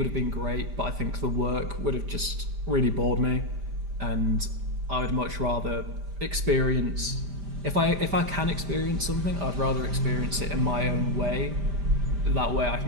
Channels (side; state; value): left; late; 5.0 ms